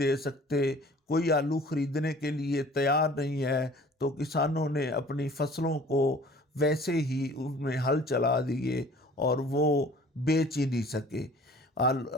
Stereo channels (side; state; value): both; normal; correlation 0.49